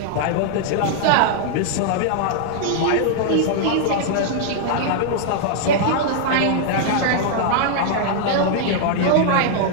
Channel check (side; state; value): both; different; correlation -0.01